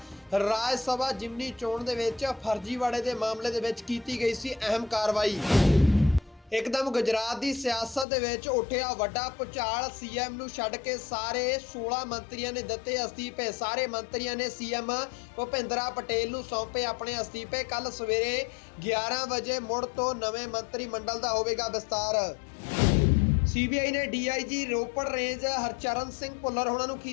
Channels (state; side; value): drops out; right; at 8.1 s